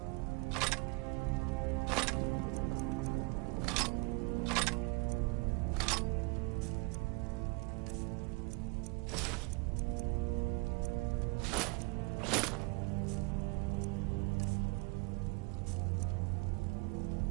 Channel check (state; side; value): quieter; left; 29.0 dB